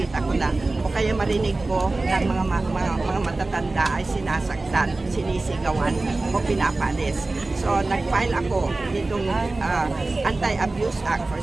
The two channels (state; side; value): quieter; left; 3.2 dB